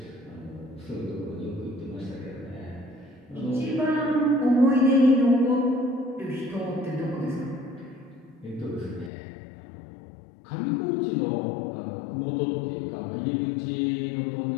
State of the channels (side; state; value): right; drops out; at 9.1 s